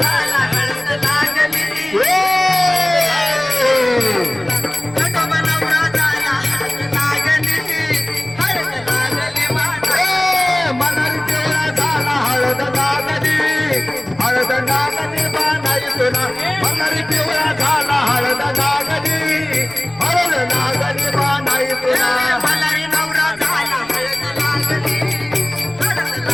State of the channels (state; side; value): noise; left; rumble, 25 dB below the sound